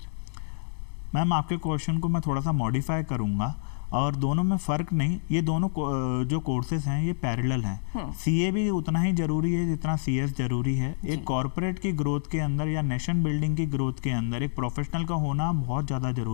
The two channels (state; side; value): silent; right; digital silence